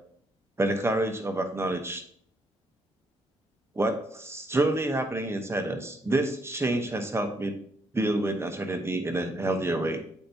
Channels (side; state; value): both; normal; correlation 0.73